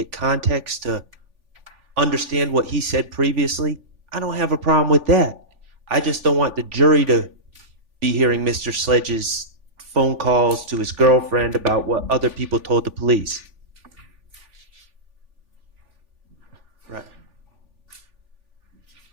context to understand what he said previously, I don't have a problem with that. I just don't want the jury to be hearing Mr. Sledge's phone calls to his girlfriend about what other people told the police. Right.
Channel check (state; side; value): late; left; 3.5 ms